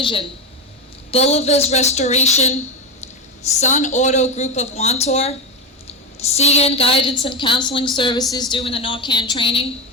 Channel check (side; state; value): both; normal; correlation 0.14